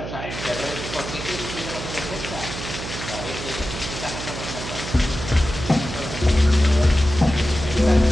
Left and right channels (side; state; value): right; noise; hum, 8 dB below the sound